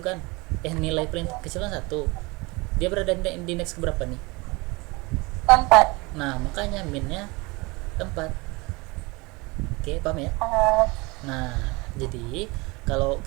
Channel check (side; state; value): left; quieter; 25.2 dB